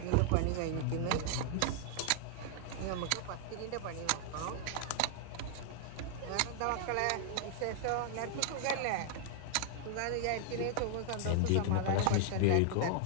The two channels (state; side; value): different; both; correlation 0.00